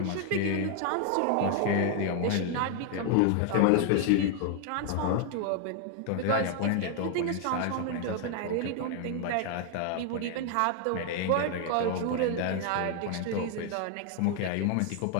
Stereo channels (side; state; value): both; different; correlation 0.00